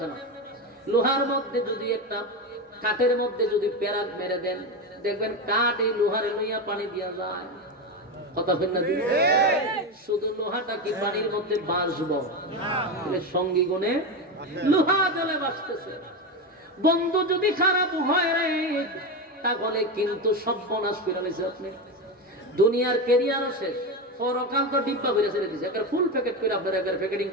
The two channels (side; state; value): both; normal; correlation 0.16